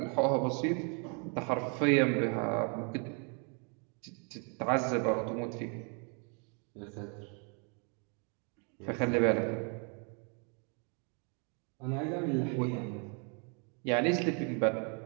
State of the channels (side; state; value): left; quieter; 37.1 dB